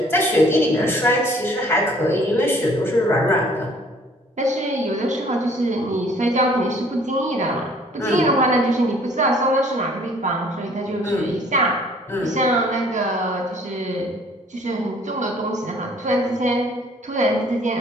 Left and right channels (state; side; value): normal; both; correlation 0.57